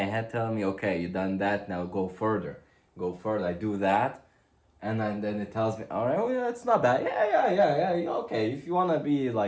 head telling me, okay, you done that, now go further. Go further. I do that, and then it tells me, all right, oh yeah, it's not bad. Yeah. Okay, if you want to be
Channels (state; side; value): identical; both; correlation 1.00